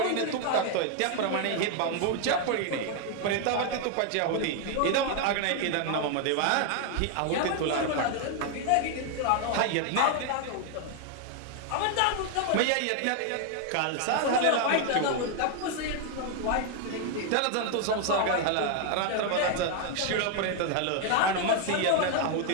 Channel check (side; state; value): both; different; correlation 0.00